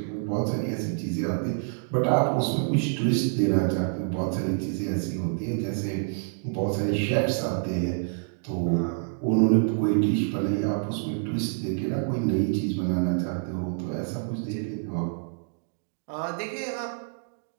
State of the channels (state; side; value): silent; left; digital silence